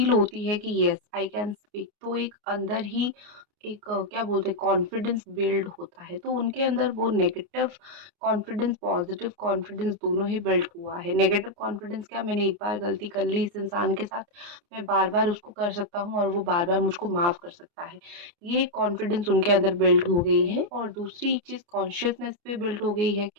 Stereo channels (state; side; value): late; left; 29 ms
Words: होती है कि येस आई कैन स्पीक, तो एक अंदर ही एक क्या बोलते हैं कॉन्फिडेंस बिल्ड होता है, तो उनके अंदर वो नेगेटिव कॉन्फिडेंस, पॉजिटिव कॉन्फिडेंस दोनों ही बिल्ड हुआ है। नेगेटिव कॉन्फिडेंस क्या, मैंने एक बार गलती कर ली इस इंसान के साथ, मैं बार-बार उसको कर सकता हूँ और वो बार-बार मुझको माफ़ कर सकता है। ये कॉन्फिडेंस उनके अंदर बिल्ड हो गई है और दूसरी एक चीज़ कॉन्शियसनेस पे बिल्ड हो गई है